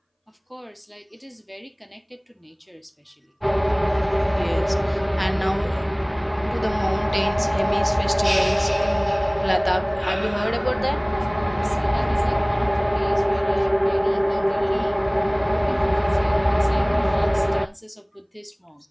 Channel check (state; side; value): identical; both; correlation 1.00